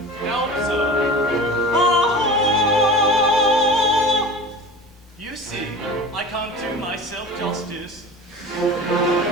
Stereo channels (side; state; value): both; normal; correlation 0.35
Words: Now observe. You see, I can't do myself justice.